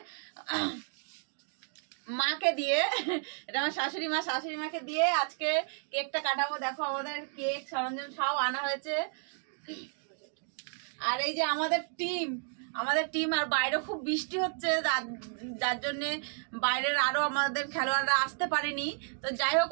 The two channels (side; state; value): left; silent; 56 dB below the other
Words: মাকে দিয়ে, এটা আমার শাশুড়ি মাকে দিয়ে আজকে কেকটা কাটাবো। দেখো আমাদের কেক সরঞ্জাম সব আনা হয়েছে। আর এই যে আমাদের টিম আর বাইরে খুব বৃষ্টি হচ্ছে, যার জন্যে বাইরের আরো আমাদের খেলোয়াড়রা আসতে পারেনি। তো যাই হোক,